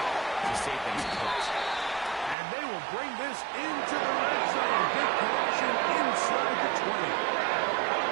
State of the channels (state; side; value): drops out; left; at 2.4 s